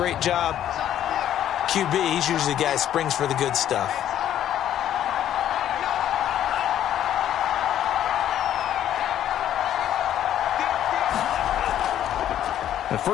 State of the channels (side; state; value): right; quieter; 11.1 dB